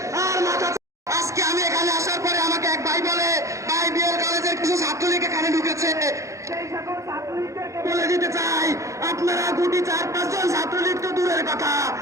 আর মাথা। আজকে আমি এখানে আসার পরে আমাকে এক ভাই বলে, ভাই বিএল কলেজের কিছু ছাত্রলীগ এখানে ঢুকেছে। সেই সকল ছাত্রলীগদেরকে বলে দিতে চাই, আপনারা গুটি 4-5 জন ছাত্রলীগ তো দূরের কথা,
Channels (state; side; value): late; left; 0.15 ms